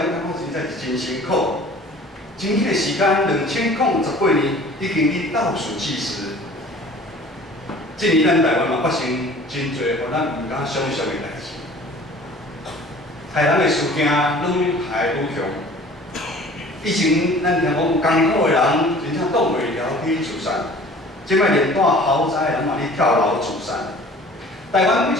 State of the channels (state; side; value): normal; both; correlation 0.47